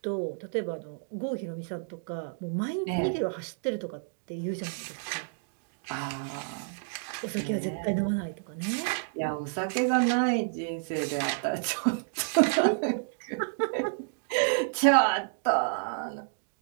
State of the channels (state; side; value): silent; left; digital silence